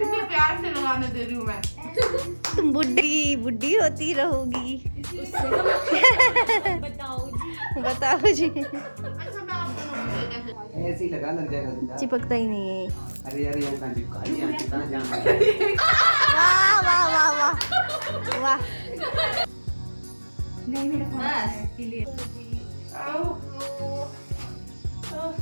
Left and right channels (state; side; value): inverted; both; correlation -1.00